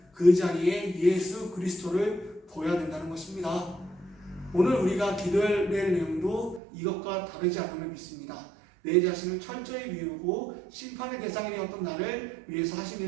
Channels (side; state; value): left; drops out; at 6.6 s